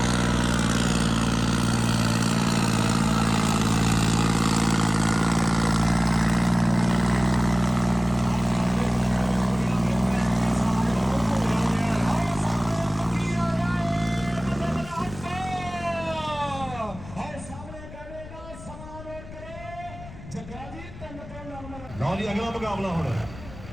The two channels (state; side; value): noise; left; rumble, 15 dB below the sound